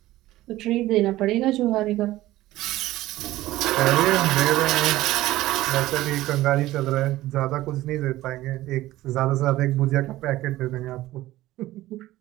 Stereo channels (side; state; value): left; quieter; 16.2 dB